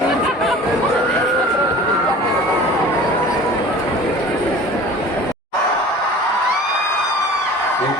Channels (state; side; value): normal; both; correlation 0.42